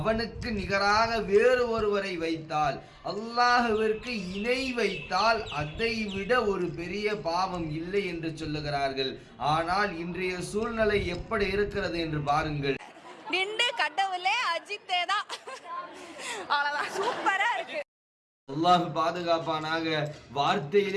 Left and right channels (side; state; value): both; identical; correlation 1.00